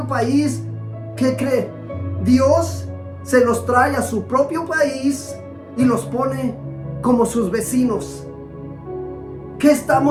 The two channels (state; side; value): identical; both; correlation 1.00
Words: país, ¿qué cree? Dios se los trae a su propio país y los pone como sus vecinos. ¿Qué